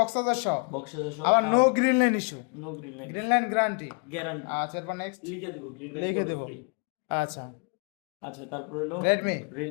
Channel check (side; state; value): right; quieter; 36.0 dB